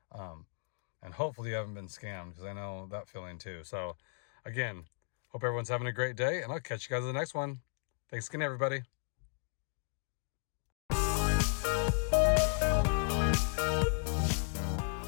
And hopefully you haven't been scammed, because I know that feeling too. So again, hope everyone's having a great day, and I'll catch you guys in the next one. Thanks again, everybody.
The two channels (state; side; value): silent; right; digital silence